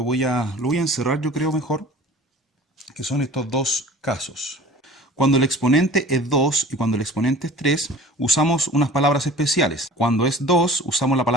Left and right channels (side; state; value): both; normal; correlation 0.43